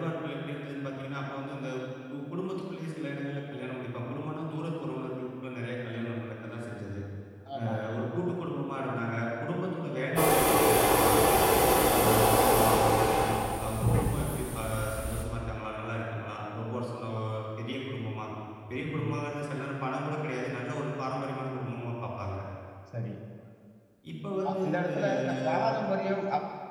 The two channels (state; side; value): identical; both; correlation 1.00